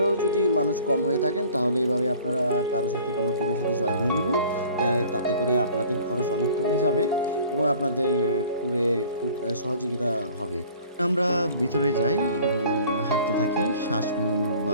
যদি মানুষ কম হয়ে থাকেন তাহলে এইভাবে আপনারা কারোর সাথে কোনো টিমের সাথে জয়েন হয়ে নেবেন। তাতে করে আপনাদের খরচ অনেক কমে যাবে এবং আপনাদের ট্যুরে খুব সহযোগিতা হবে। আমরা ভিতরে যাই এবং হাঁটতে থাকি। শ্বাসমূল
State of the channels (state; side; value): inverted; both; correlation -0.50